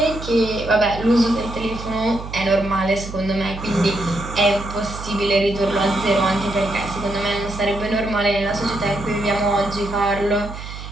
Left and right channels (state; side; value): noise; right; hum, 10 dB below the sound